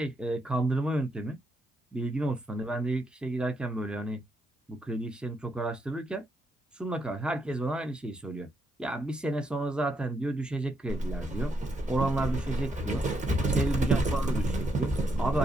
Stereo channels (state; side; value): normal; both; correlation 0.78